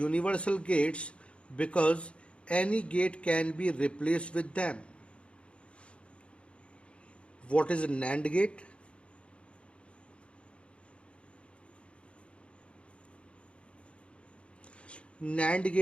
gates because any gate can be replaced with them. What is a NAND gate? NAND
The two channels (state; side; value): late; right; 0.059 ms